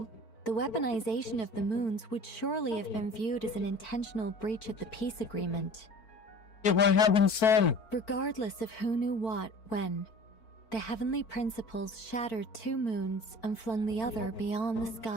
the weaponization of the moons would surely have been viewed as an intentional breach of the peace agreement. Yeah, what happened then? Regardless of who knew what, when, the heavenly principles shattered 2 moons and flung the other beyond the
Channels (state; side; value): late; right; 4.5 ms